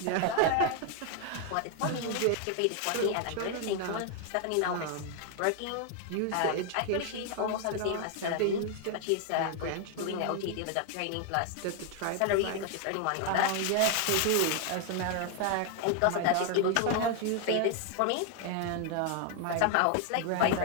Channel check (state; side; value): different; both; correlation 0.00